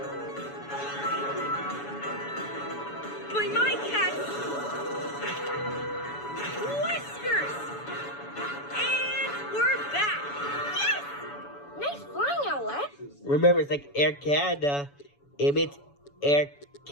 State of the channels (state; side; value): late; right; 7.0 ms